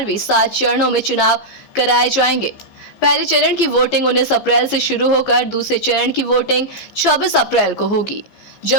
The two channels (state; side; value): late; right; 15 ms